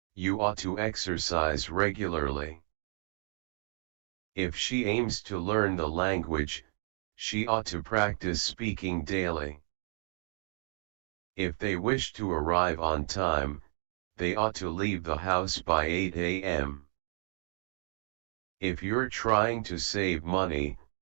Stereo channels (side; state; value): left; silent; digital silence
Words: you ought to exercise regularly. If she aims to learn the language, she ought to practice speaking daily. If they wish to arrive on time, they ought to leave the house by 8 a.m. If you're trying to save money,